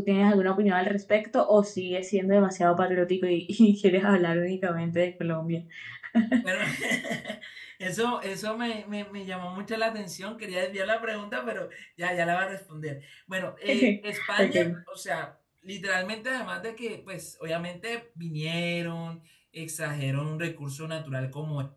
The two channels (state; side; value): identical; both; correlation 1.00